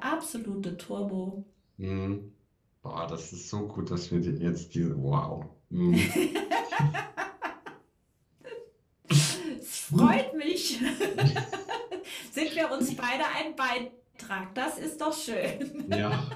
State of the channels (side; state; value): both; identical; correlation 1.00